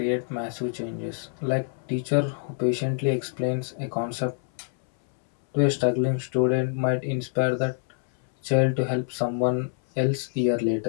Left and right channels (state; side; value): silent; right; 61 dB below the other